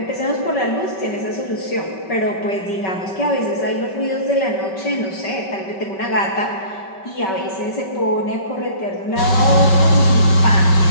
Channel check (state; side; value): late; right; 5.2 ms